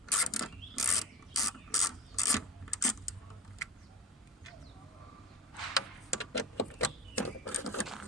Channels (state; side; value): normal; both; correlation 0.34